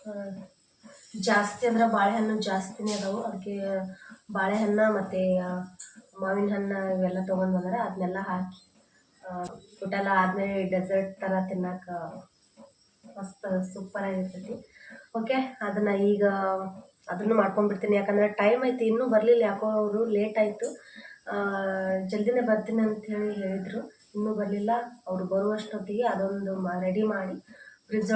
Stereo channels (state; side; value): identical; both; correlation 1.00